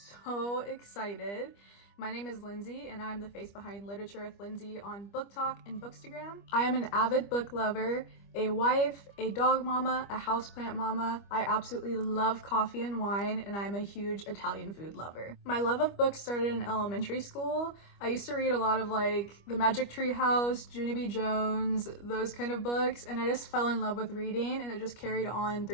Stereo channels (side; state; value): right; late; 25 ms